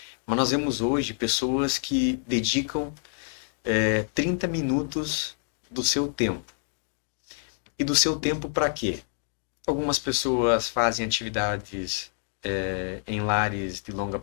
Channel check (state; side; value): silent; right; 60 dB below the other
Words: Mas nós vemos hoje pessoas que dedicam 30 minutos do seu tempo. E do seu tempo para quê? Algumas pessoas fazem atividades em lares de longa